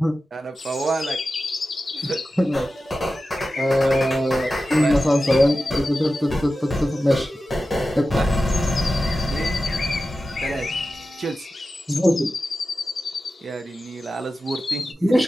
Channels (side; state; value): both; normal; correlation 0.93